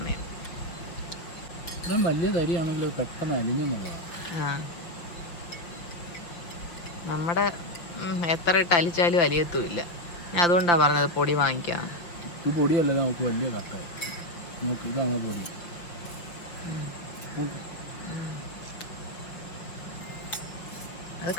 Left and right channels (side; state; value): right; late; 6.1 ms